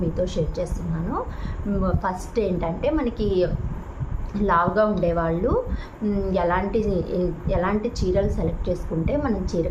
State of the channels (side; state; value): both; identical; correlation 1.00